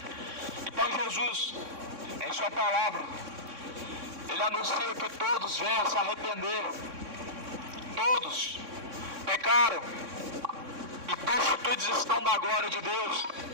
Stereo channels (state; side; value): late; left; 3.6 ms